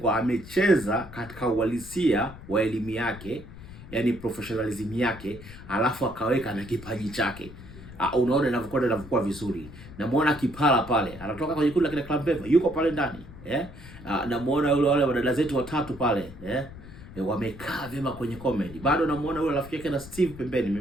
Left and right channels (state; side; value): noise; left; rumble, 16 dB below the sound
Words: amecheza katika uhalisia wa elimu yake, yani professionalism yake, alafu akaweka na kipaji chake. Unaona inavyokuwa vizuri. Namuona Kipala pale, anatoka kwenye kundi la kina Club Beva, yuko pale ndani. Namuona wale wadada zetu watatu pale, wamekaa vyema kwenye comedy. Bado namuona yule rafiki yake na Steve pembeni,